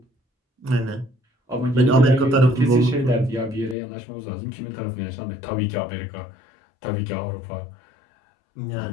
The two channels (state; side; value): drops out; right; at 3.8 s